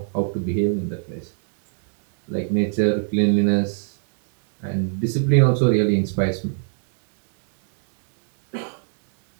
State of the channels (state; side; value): silent; left; 65 dB below the other